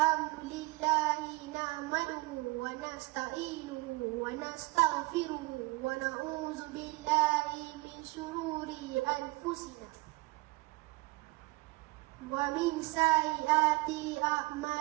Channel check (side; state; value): left; quieter; 23.3 dB